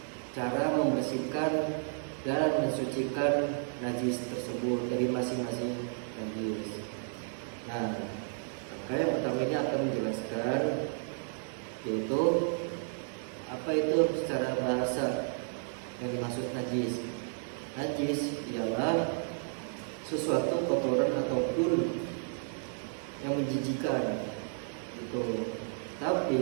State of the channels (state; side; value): silent; left; 56 dB below the other